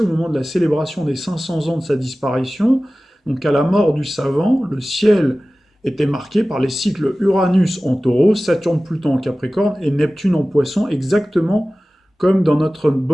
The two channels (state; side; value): normal; both; correlation 0.97